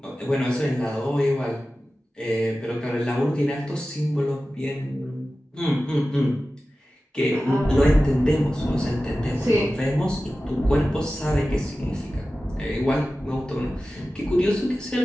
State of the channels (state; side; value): normal; both; correlation 0.95